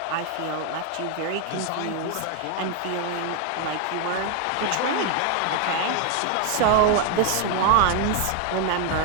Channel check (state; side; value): different; both; correlation 0.01